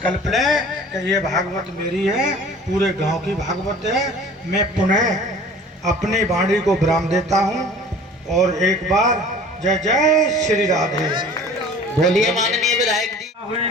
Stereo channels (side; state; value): both; normal; correlation 0.45